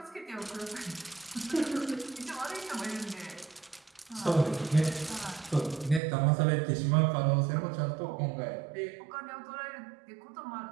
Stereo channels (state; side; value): drops out; left; at 6.0 s